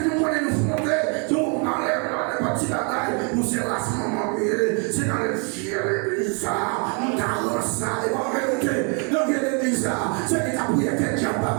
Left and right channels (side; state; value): left; quieter; 36.5 dB